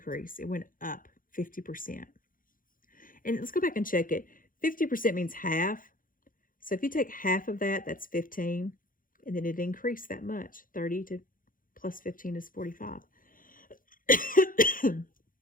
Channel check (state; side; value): late; right; 0.40 ms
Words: It went up 50%. And let's go back and check it. 50% means half. So if you take half of that, that's 15. And then it increased that much. 30 to plus 15 is 45.